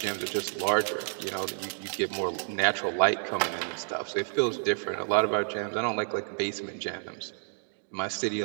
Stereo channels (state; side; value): silent; left; digital silence